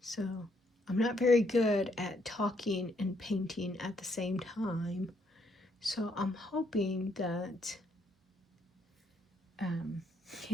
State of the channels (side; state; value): both; normal; correlation 0.72